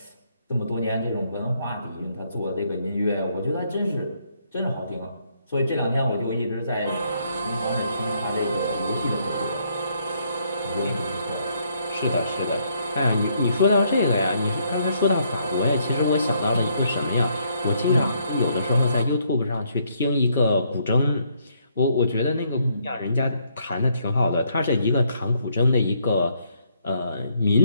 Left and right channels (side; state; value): both; inverted; correlation -0.71